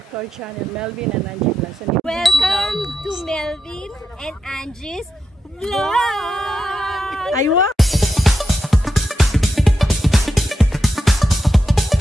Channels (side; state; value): both; normal; correlation 0.85